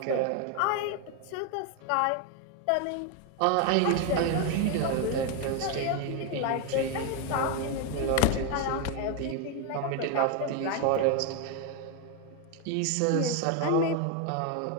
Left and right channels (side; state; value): both; different; correlation 0.01